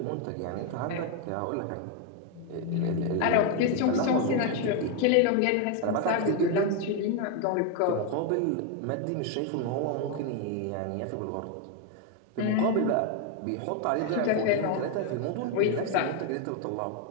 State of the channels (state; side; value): different; both; correlation 0.01